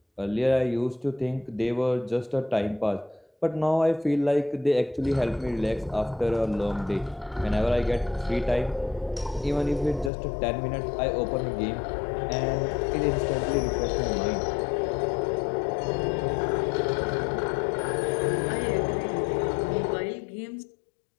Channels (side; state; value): right; drops out; at 10.1 s